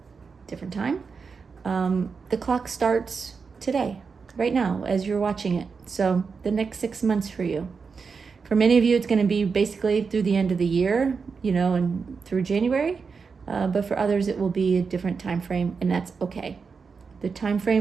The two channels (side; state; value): left; quieter; 5.3 dB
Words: different time. The clock starts today, right now, as you're watching it. So the next 6 months for you. For many of you, it's going to be basically through the end of the year, and through January. But for others, it will be a different time frame, and that's okay. The time